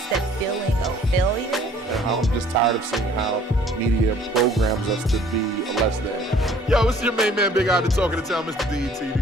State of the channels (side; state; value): both; normal; correlation 0.56